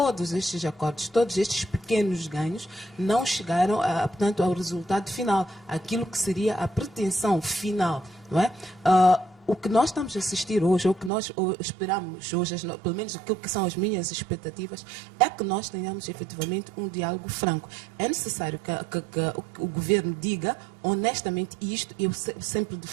estes acordos, todos estes pequenos ganhos, não chegaram, portanto, ao resultado final, aquilo que seria a pretensão final, não é? O que nós estamos a assistir hoje, ou o que nós esperamos hoje, pelo menos aquilo que são as minhas expectativas, é que nós tenhamos efetivamente um diálogo franco. É necessário que o governo diga honestamente isto, eu sempre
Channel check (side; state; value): left; drops out; at 11.1 s